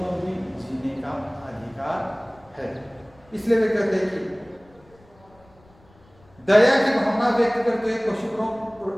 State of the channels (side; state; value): left; noise; rumble, 28 dB below the sound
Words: भी जीने का अधिकार है। इसलिए वे कहते हैं कि दया की भावना व्यक्त करते हुए